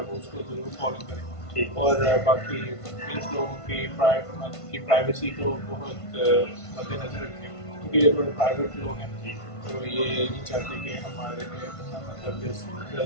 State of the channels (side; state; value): right; late; 1.5 ms